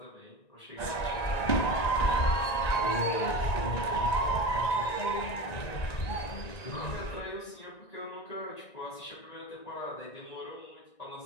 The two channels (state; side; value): late; right; 1.9 ms